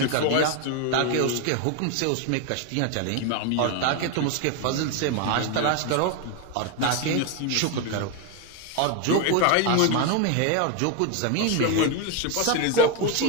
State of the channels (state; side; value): different; both; correlation 0.01